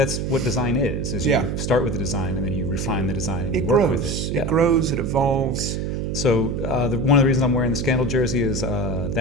what design is you start with the design and then you refine the design and you work with it. It grows, it evolves. So one of the reasons I'm wearing the Scandal jersey is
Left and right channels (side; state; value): right; noise; hum, 2 dB below the sound